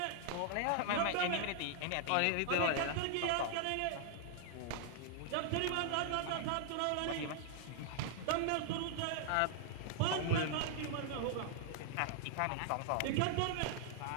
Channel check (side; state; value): both; different; correlation 0.00